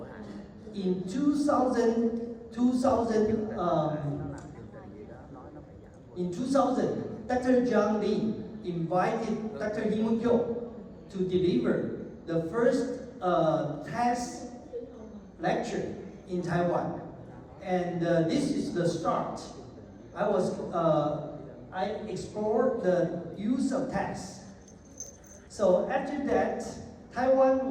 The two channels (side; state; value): both; identical; correlation 1.00